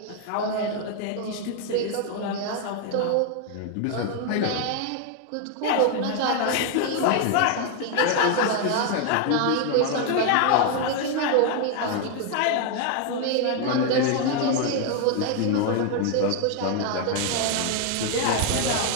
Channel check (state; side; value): different; both; correlation 0.01